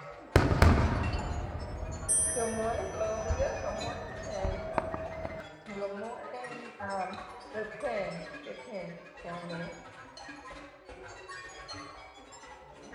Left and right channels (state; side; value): identical; both; correlation 1.00